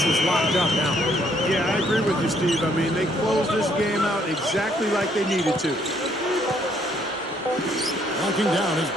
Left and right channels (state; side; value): normal; both; correlation 0.68